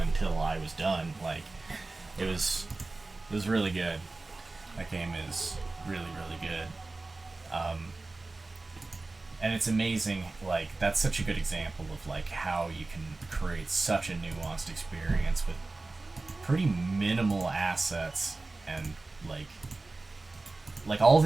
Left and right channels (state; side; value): quieter; left; 3.3 dB